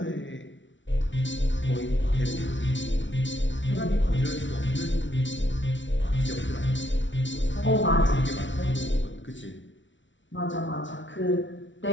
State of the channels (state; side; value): late; right; 0.55 ms